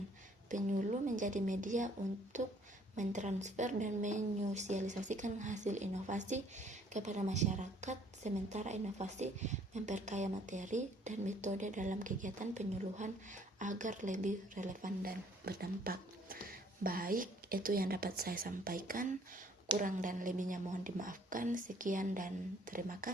Penyuluh menjadi media untuk mentransfer dan menyosialisasikan hasil inovasi kepada masyarakat, sementara inovasi memperkaya materi dan metode dalam kegiatan penyuluhan agar lebih relevan dan berdampak. Baik, itu yang dapat saya sampaikan. Kurang dan lebihnya mohon dimaafkan. Sekian dan terima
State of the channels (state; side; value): normal; both; correlation 0.60